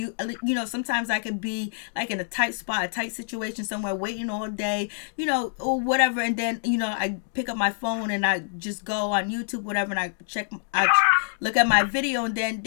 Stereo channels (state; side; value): silent; right; digital silence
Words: Sometimes I could be like in a tight spot, a tight situation somewhere, waiting all day, or whatever, and then I pick up my phone and I just go on YouTube, whatever, and I look at my video, and then